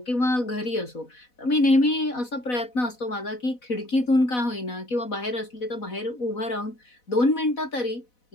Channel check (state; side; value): late; right; 4.1 ms